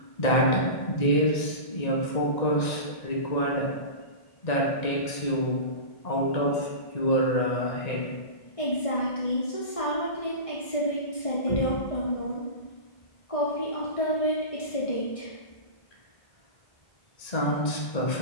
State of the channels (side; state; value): right; late; 1.8 ms